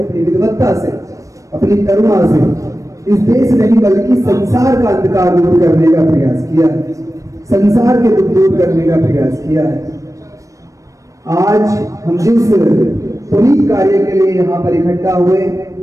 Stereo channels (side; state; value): left; late; 0.16 ms